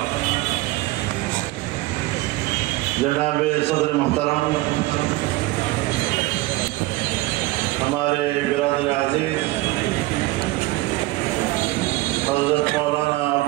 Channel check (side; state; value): left; quieter; 19.7 dB